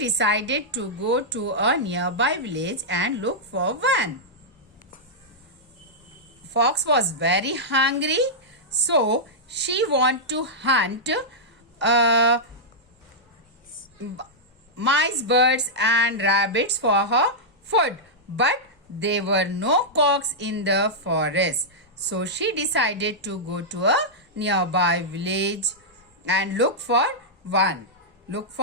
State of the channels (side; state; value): both; normal; correlation -0.09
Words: to go to a nearby village and look for one. Fox was very hungry, so she wanted to hunt mice, birds and rabbits for her food, but there were no cocks in the forest. So she decided to go to a nearby village and look for